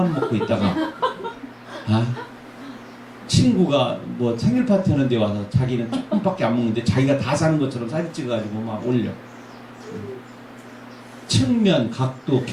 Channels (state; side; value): identical; both; correlation 1.00